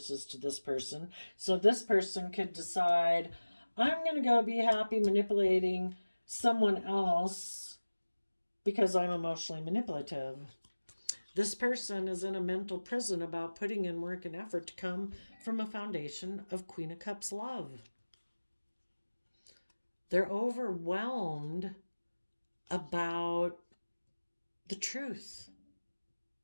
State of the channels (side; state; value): both; inverted; correlation -1.00